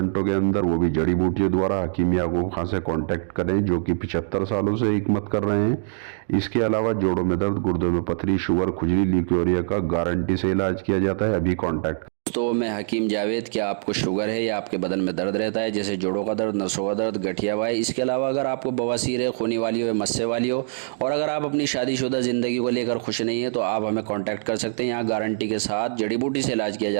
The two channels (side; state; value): left; silent; digital silence